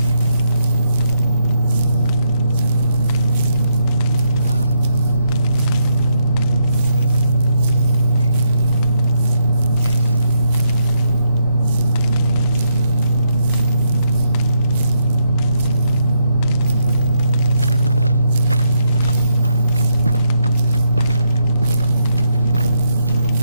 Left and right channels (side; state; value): both; inverted; correlation -0.79